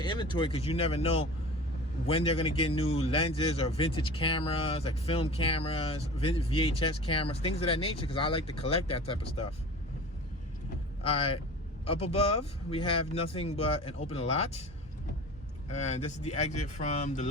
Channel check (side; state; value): both; normal; correlation 0.37